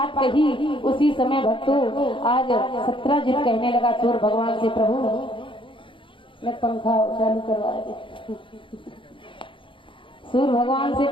कही उसी समय भक्तों आज सत्राजित कहने लगा सूर्य भगवान से, प्रभु मैं पंखा चालू करवा दे। सूर्य भगवान से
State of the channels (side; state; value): right; late; 0.25 ms